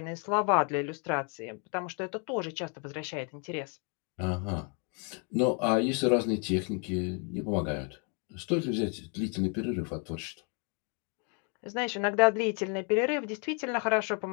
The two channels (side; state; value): right; quieter; 36.9 dB